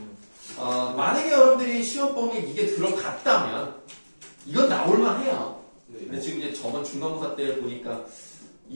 만약에 여러분들이 시험 범위에 이게 들어갔다면 이건 나올만 해요. 네. 근데 지금 이제 저번 중간고사 때 보니까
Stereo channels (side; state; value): both; inverted; correlation -1.00